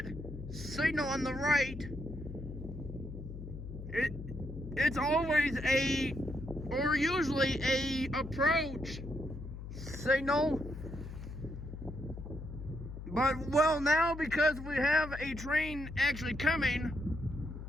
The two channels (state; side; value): noise; left; hum, 10 dB below the sound